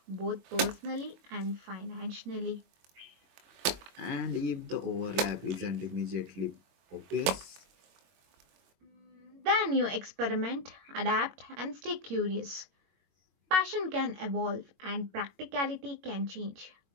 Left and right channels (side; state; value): left; late; 22 ms